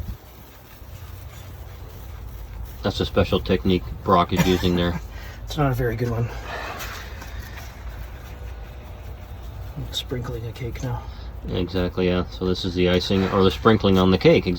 That's a special technique Brock is using there. It's not a very good one. I'm sprinkling a cake now. Exactly, yeah. So this is the icing, or the sprinkling on the cake,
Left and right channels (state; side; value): identical; both; correlation 1.00